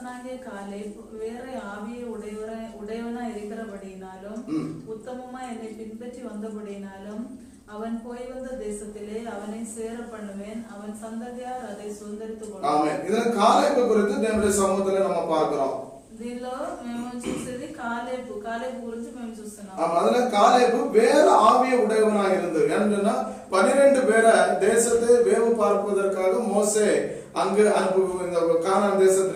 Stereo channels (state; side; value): identical; both; correlation 1.00